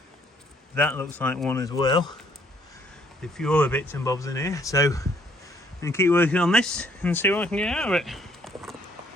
That looks like one as well. A few other bits and bobs in here. So I'm going to keep working on this and see what I can get out of it.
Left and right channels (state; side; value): normal; both; correlation 0.65